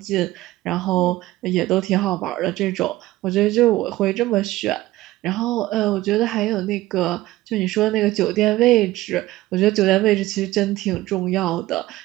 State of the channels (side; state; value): left; quieter; 17.1 dB